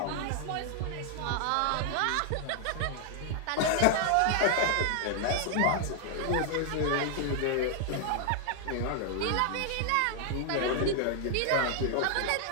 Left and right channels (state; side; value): different; both; correlation 0.00